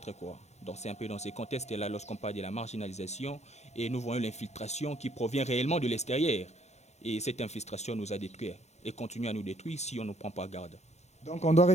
quoi. Donc c'est un peu dans ces contextes-là lorsqu'on parle de la marginalisation et nous voyons l'infiltration qui provient réellement de l'extérieur. Et cette infiltration nous a détruits et continue à nous détruire si on ne prend pas garde. Donc on doit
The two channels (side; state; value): right; late; 0.32 ms